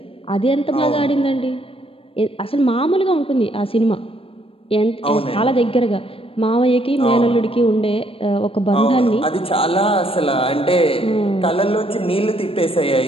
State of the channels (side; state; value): right; late; 0.27 ms